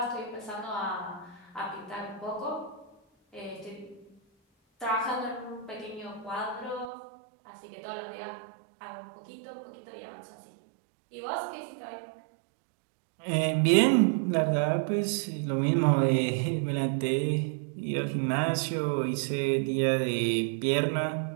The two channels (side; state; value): left; drops out; at 6.9 s